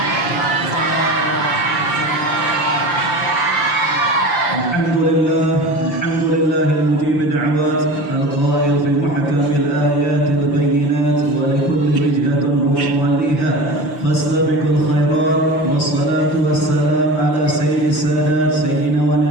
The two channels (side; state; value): right; late; 5.8 ms